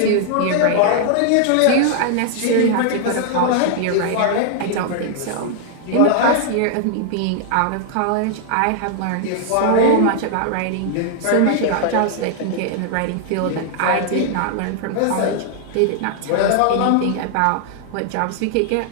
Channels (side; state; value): both; different; correlation 0.00